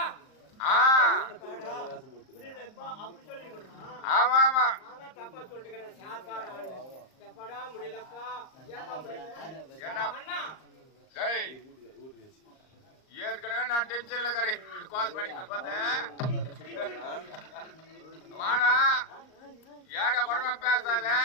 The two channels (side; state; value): right; late; 38 ms